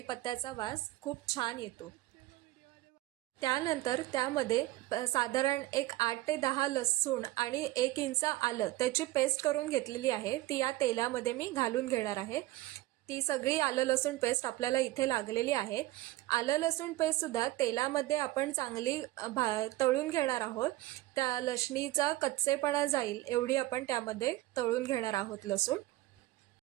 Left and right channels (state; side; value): quieter; left; 17.1 dB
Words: वास खूप छान येतो. त्यानंतर त्यामध्ये साधारण एक 8 ते 10 लसूण आणि 1 इंच आलं त्याची पेस्ट करून घेतलेली आहे. ती या तेलामध्ये मी घालून घेणार आहे. ती सगळी आलं लसूण पेस्ट आपल्याला इथे लागलेली आहे. आलं लसूण पेस्टसुद्धा तेलामध्ये आपण चांगली तळून घेणार आहोत. त्या लसणीचा कच्चेपणा जाईल एवढी आपण त्यामध्ये तळून घेणार आहोत लसूण.